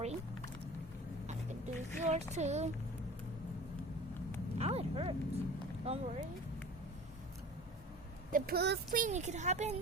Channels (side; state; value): both; normal; correlation 0.40